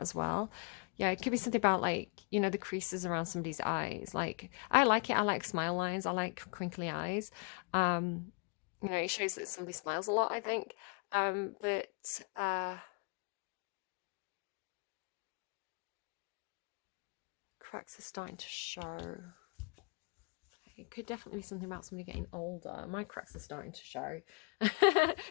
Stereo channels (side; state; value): right; quieter; 34.2 dB